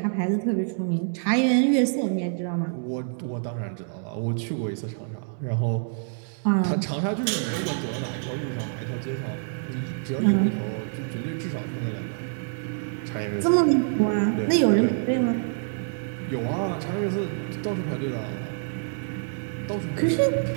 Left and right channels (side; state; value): left; silent; digital silence